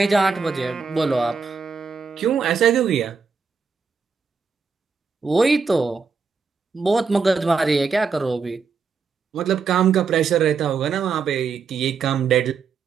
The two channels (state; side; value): quieter; left; 5.3 dB